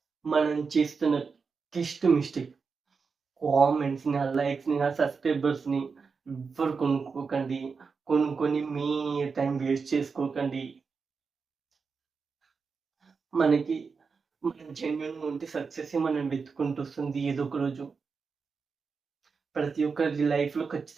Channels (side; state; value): left; quieter; 5.1 dB